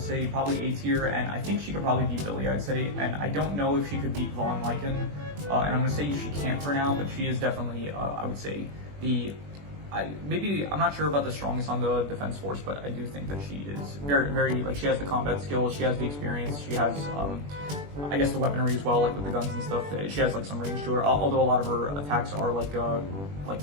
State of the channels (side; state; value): left; late; 21 ms